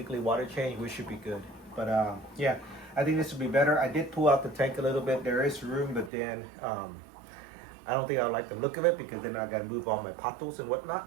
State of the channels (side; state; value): left; drops out; at 6.1 s